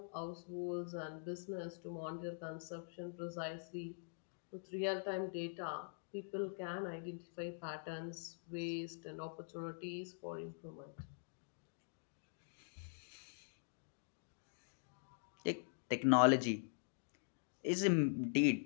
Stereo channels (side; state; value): right; silent; digital silence